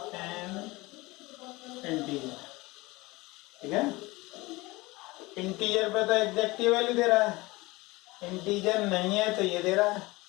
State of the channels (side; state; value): right; quieter; 21.9 dB